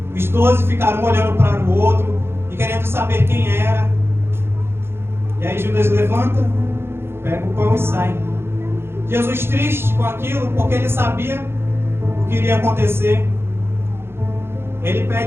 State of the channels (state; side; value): late; left; 0.12 ms